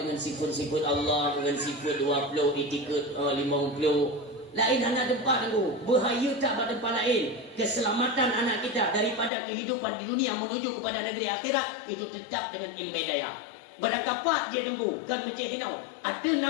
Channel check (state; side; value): drops out; right; at 9.3 s